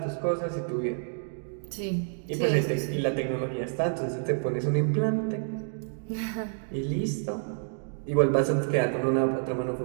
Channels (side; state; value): left; silent; digital silence